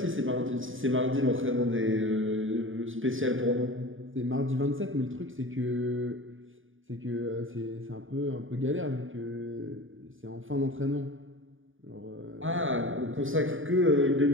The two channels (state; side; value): late; left; 0.58 ms